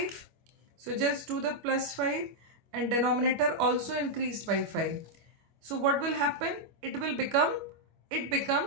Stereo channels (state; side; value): late; left; 25 ms